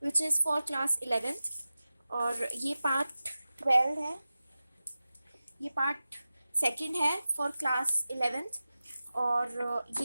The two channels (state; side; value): inverted; both; correlation -0.95